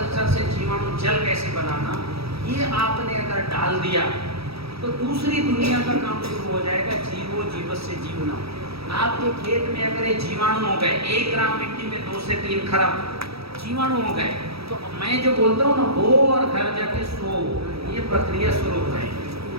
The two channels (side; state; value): left; late; 0.77 ms